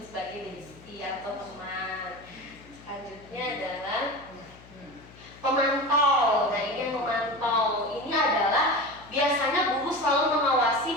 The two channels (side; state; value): left; noise; hum, 22 dB below the sound